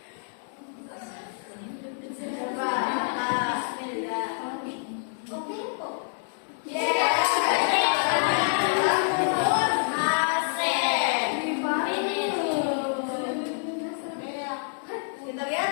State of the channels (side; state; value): right; silent; digital silence